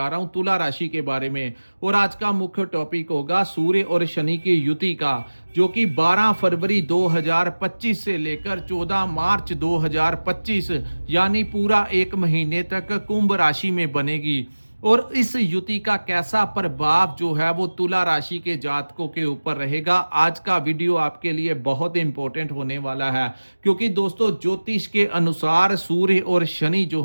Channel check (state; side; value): inverted; both; correlation -1.00